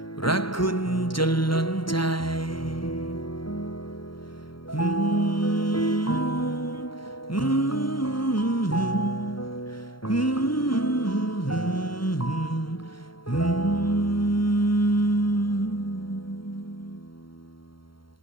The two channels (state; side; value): late; right; 0.73 ms